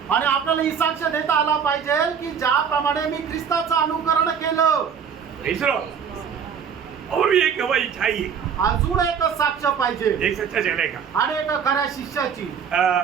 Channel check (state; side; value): quieter; left; 7.2 dB